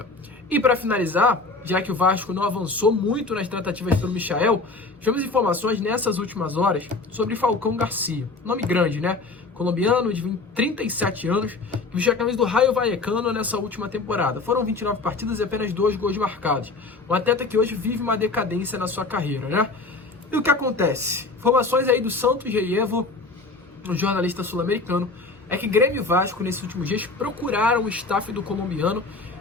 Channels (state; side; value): quieter; right; 3.7 dB